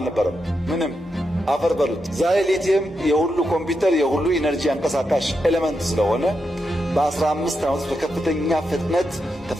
ምንም አፈር በሉት። ዛሬ ሊቲየም የሁሉ ኮምፒውተር የሁሉ ኢነርጂ አንቀሳቃሽ ኤሌመንት ስለሆነ በ15 ዓመት በከፍተኛ ፍጥነት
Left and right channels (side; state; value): both; normal; correlation 0.85